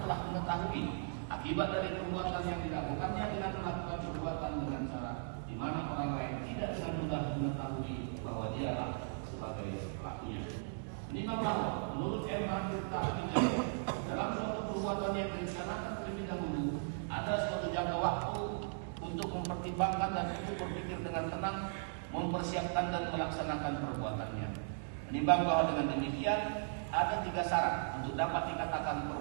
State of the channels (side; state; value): left; silent; digital silence